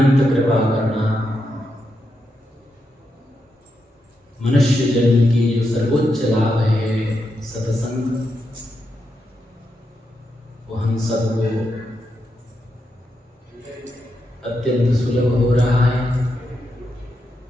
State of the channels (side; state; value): both; normal; correlation 0.84